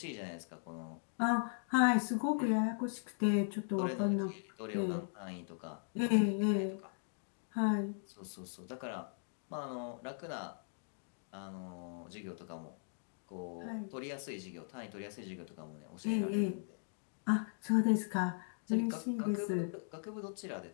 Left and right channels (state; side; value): silent; right; digital silence